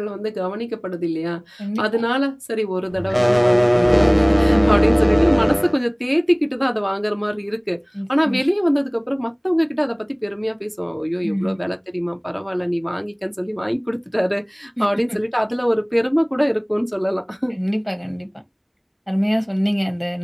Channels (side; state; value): both; identical; correlation 1.00